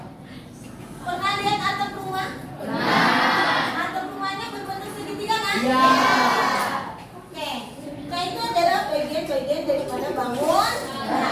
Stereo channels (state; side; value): identical; both; correlation 1.00